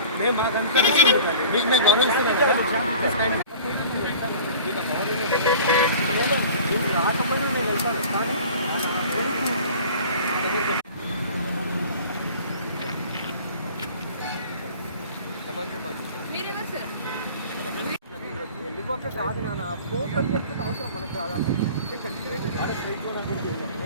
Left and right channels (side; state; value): both; inverted; correlation -0.43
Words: మేము మాకంతా మీకు మేము గౌరవిస్తున్నాం. రాకపోయినా నేను వెళ్తాను కానీ వెళ్ళిపోతే కాదు నాన్న ఫోటో చెప్పితే అవసరం మనకు రాదా